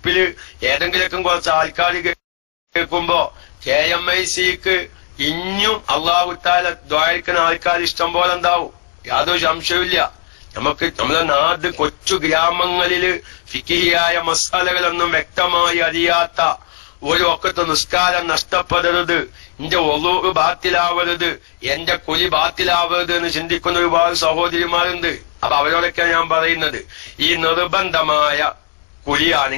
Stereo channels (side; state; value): right; silent; 60 dB below the other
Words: ഏതെങ്കിലൊക്കെ കുറച്ച് ആൾക്കാർ കേൾക്കുമ്പോ KMICക്ക് ഇനിയും അള്ളാഹു തആല ദ്വാരക്കുന്ന ആൾക്കാർ ഇഷ്ടം പോലെ ഉണ്ടാവും, യാതൊരു സംശയമില്ല. നമ്മളെ നാട് കൊച്ചു ഗ്രാമങ്ങളില് ഫിഖിഹിയായ മസാലകളൊന്നും വ്യക്തമായി അറിയാത്ത ഒരു ഒക്കത്തെ നിസ്കാരം നഷ്ടപ്പെടരുത്, എന്റെ ഒളു ബാത്തിലാവരുത്, എന്റെ കുലി ബാത്തിലാവരുത് എന്ന് ചിന്തിക്കുന്ന ഒരുപാട് സഹോദരിമാരുണ്ട്. അപ്പൊ അവരോടൊക്കെ ഞാൻ പറയുന്നത്, ഈ നിർബന്ധമായ